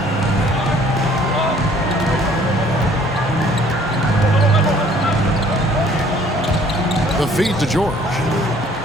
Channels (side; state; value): both; normal; correlation 0.57